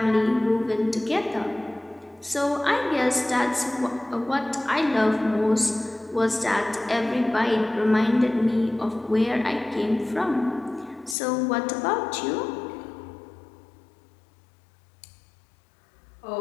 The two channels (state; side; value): drops out; right; at 11.2 s